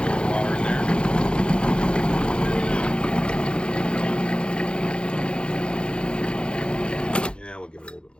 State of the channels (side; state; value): right; late; 0.054 ms